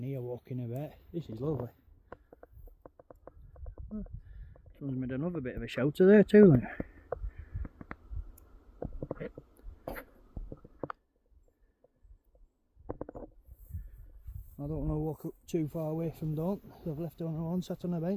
here walking about. This is lovely. Someone's made another bit of a shelter there too, look. I don't want to walk up too far away from Dawn. I've left her on her own, sat on a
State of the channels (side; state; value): both; identical; correlation 1.00